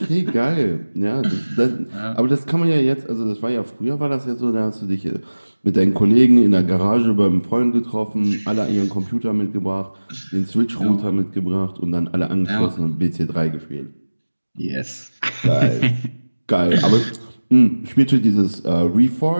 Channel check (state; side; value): inverted; both; correlation -1.00